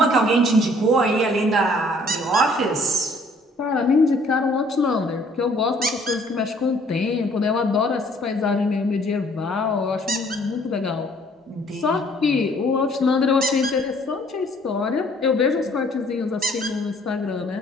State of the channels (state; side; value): normal; both; correlation 0.59